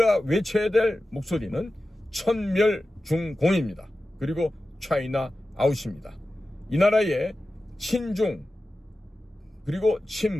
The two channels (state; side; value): normal; both; correlation 0.94